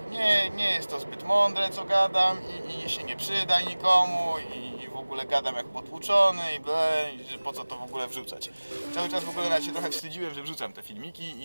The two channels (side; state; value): both; inverted; correlation -1.00